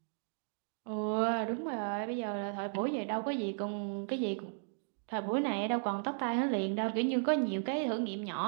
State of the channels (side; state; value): left; silent; digital silence